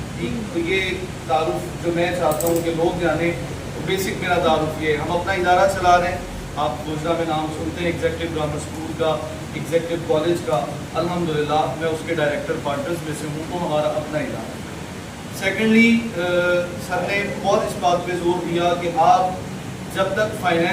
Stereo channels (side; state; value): both; identical; correlation 1.00